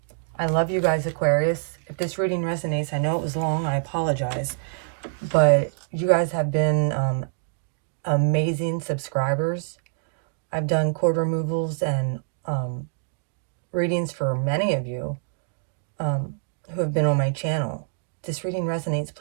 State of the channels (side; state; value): left; silent; digital silence